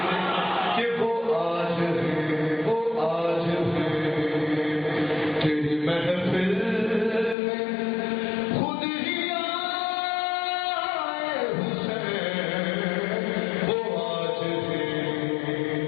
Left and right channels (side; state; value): right; drops out; at 7.4 s